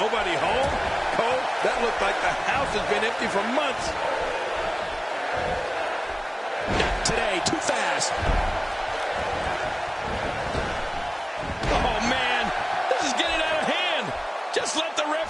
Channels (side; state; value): both; identical; correlation 1.00